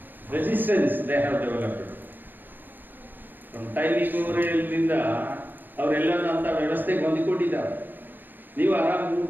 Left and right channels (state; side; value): late; left; 0.090 ms